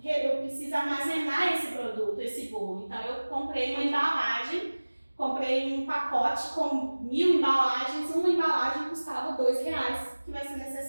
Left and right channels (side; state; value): both; inverted; correlation -1.00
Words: armazenar esse produto, esse bolo. Então, eu comprei uma embalagem, comprei um pacote com 1000 embalagens, uma embalagem custava R$2, que vai ser